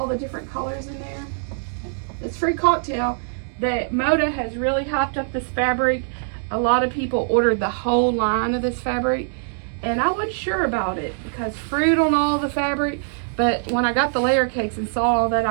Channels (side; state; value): left; silent; digital silence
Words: the different colors in there? It's free cocktail. That Moda has really hopped up this fabric. A lot of people ordered the whole line of this fabric, and I wasn't sure about it because fruit on all the fabric. But when I got the layer cakes and saw all that,